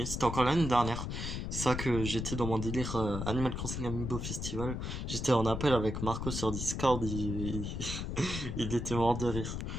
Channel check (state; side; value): noise; left; rumble, 4 dB below the sound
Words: C'était encore l'année dernière. C'est ça que j'étais dans mon délire Animal Crossing Amiibo Festival. J'étais en appel avec Marco sur Discord. Il était mort de rire.